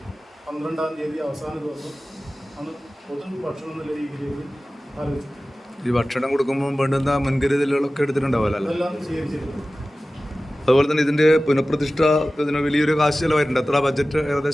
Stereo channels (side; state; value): both; normal; correlation 0.96